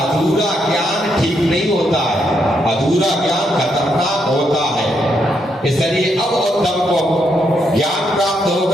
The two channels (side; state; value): both; normal; correlation 0.78